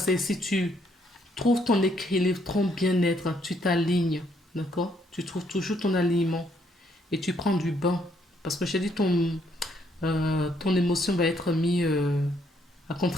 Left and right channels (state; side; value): normal; both; correlation 0.70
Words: si tu trouves ton équilibre, ton bien-être, tu t'alignes, d'accord? Tu trouves toujours ton alignement et tu prends du bain. Parce que j'ai dit, ton émotion va être mise à